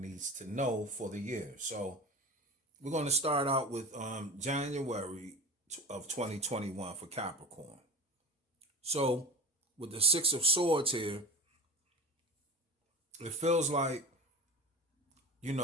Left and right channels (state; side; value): normal; both; correlation 0.30